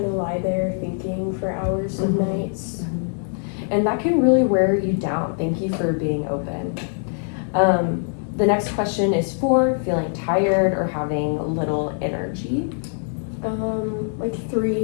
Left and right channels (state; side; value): silent; right; 58 dB below the other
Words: of lie there thinking for hours and nights. And that can really wear you down. Thank you for being open. The next question is 4, feeling tired or having little energy. Like